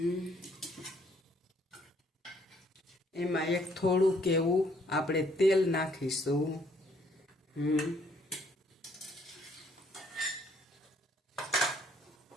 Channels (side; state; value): both; normal; correlation 0.65